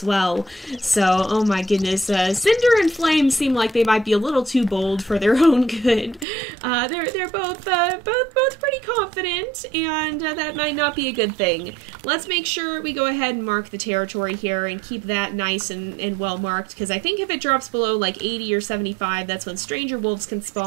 well. So, oh my goodness, Cinder and Flame seem like they might be a little too bold for their own good. They're both pretty confident, and that might not be a good thing. Let's make sure we go ahead and mark the territory here and keep that nice and well marked, because I think if it drops below like 80 or 75, that's when stranger wolves can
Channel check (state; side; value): drops out; left; at 6.2 s